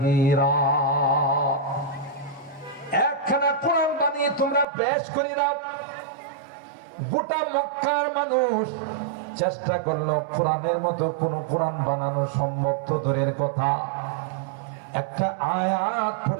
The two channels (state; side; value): drops out; left; at 4.7 s